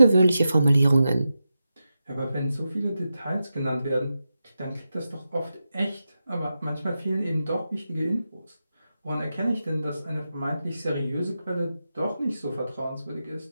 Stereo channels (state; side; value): inverted; both; correlation -0.90